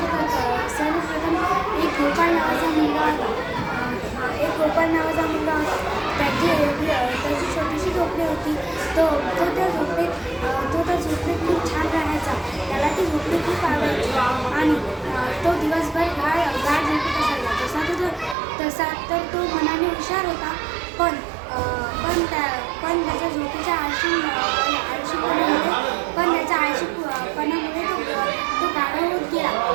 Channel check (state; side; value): drops out; left; at 18.4 s